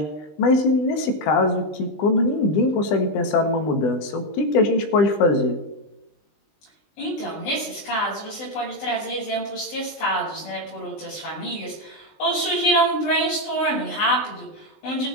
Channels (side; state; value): right; late; 20 ms